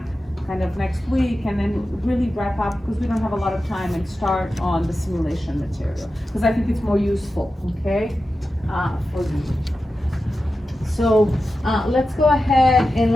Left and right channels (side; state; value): both; normal; correlation 0.92